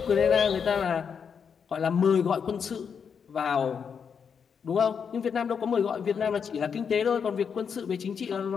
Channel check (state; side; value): quieter; right; 6.7 dB